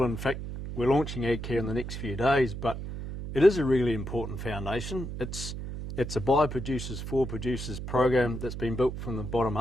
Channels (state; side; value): noise; right; hum, 7 dB below the sound